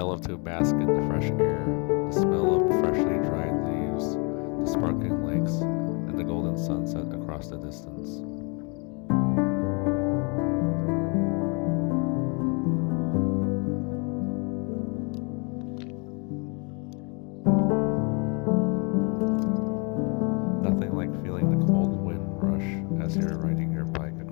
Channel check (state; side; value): quieter; right; 33.1 dB